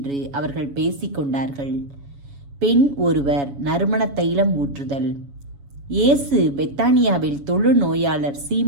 அவர்கள் பேசிக்கொண்டார்கள். பெண் ஒருவர் நறுமண தைலம் ஊற்றுதல். இயேசு பெத்தானியாவில் தொழுநோயாளர்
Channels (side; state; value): left; late; 7.1 ms